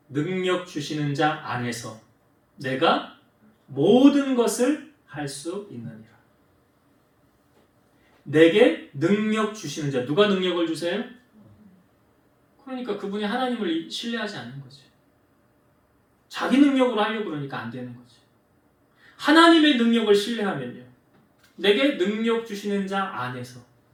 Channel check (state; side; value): identical; both; correlation 1.00